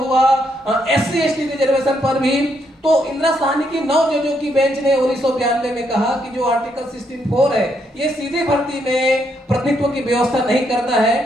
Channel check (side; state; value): both; normal; correlation 0.76